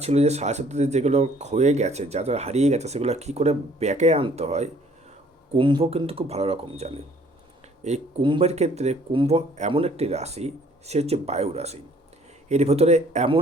ছিল যে সাথে সাথে যেগুলো ক্ষয়ে গেছে, যা যা হারিয়ে গেছে, সেগুলো কী করে ব্যাকে আনতে হয়, কুম্ভ কিন্তু খুব ভালো রকম জানে। এই কুম্ভের ক্ষেত্রে কুম্ভ এমন একটি রাশি, সে হচ্ছে বায়ু রাশি। এর ভেতরে এমন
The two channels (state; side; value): normal; both; correlation 0.58